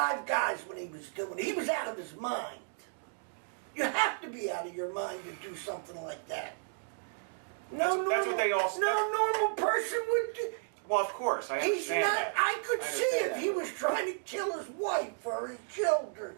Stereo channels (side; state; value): left; silent; digital silence